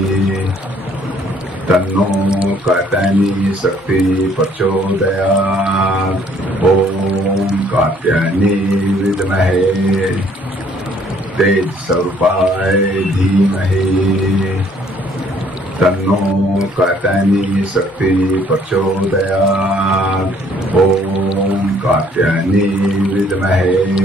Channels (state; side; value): normal; both; correlation 0.62